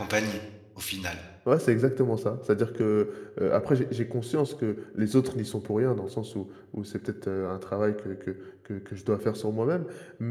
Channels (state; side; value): identical; both; correlation 1.00